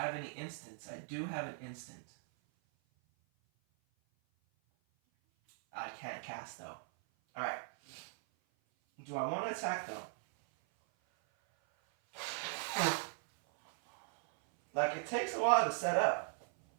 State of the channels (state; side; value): silent; left; 52 dB below the other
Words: any instants? I do have an instant. I can't cast though. Alright. Do I want to attack though? Like, it takes a while to set up.